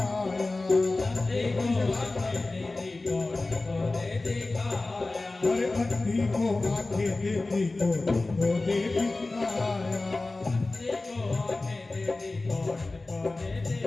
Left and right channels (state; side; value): quieter; right; 3.2 dB